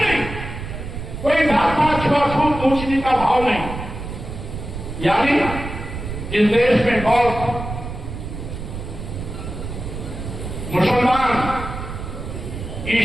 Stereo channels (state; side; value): noise; right; rumble, 8 dB below the sound